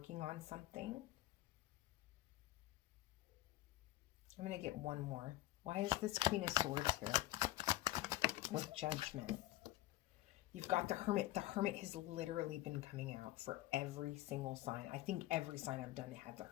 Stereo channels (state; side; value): quieter; right; 16.8 dB